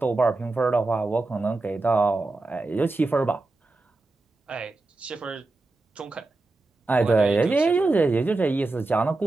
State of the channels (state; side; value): quieter; left; 3.2 dB